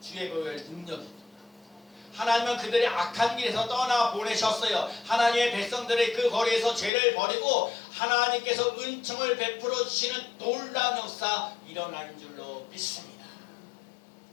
주의 보혈 능력이 있도다. 하나님은 그들의 악한 길에서 떠나 보내셨어요. 하나님의 백성들의 그 거리에서 죄를 버리고 하나님께서 은총을 베풀어 주시는 놀라운 역사 일어날 줄로 믿습니다.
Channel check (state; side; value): drops out; right; at 6.9 s